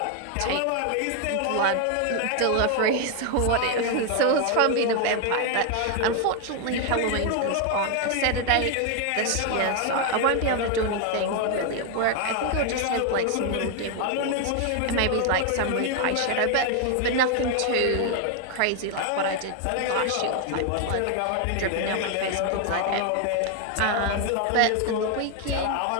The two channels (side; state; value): both; different; correlation 0.01